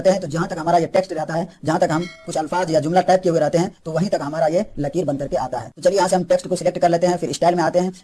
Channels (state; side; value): identical; both; correlation 1.00